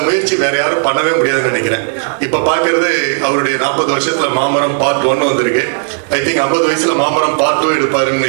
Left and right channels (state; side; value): silent; left; 61 dB below the other